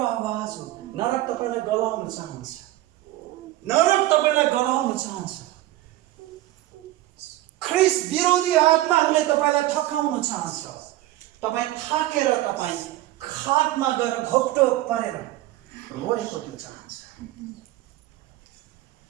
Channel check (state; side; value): quieter; left; 16.0 dB